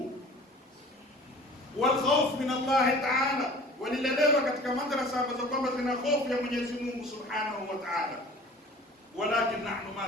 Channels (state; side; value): normal; both; correlation 0.45